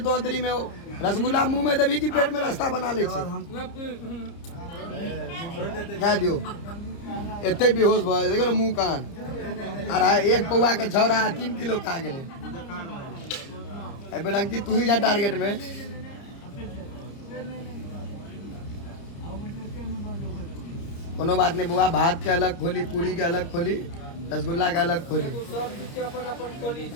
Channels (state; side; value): late; right; 30 ms